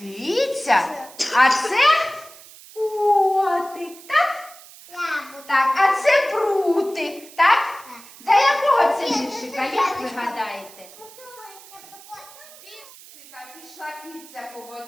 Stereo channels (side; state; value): right; noise; hiss, 20 dB below the sound